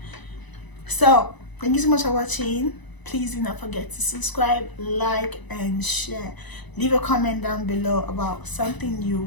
So thank you so much for watching. Please do not forget to subscribe, like, and share. Leave a comment down below about something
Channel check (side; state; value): right; late; 1.0 ms